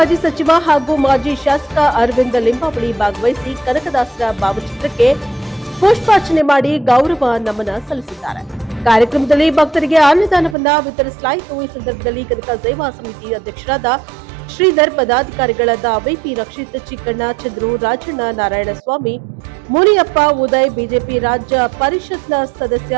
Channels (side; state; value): left; drops out; at 10.6 s